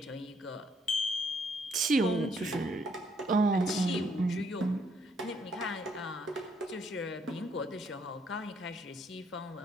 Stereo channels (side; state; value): both; normal; correlation 0.69